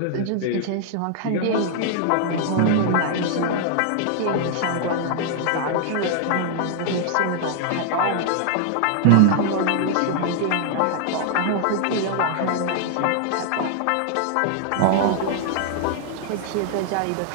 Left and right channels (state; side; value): different; both; correlation 0.00